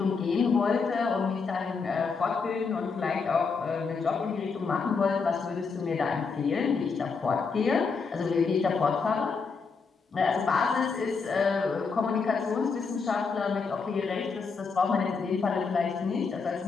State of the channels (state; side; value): quieter; right; 5.0 dB